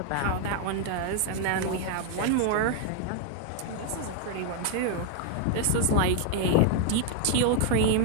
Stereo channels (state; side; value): different; both; correlation 0.01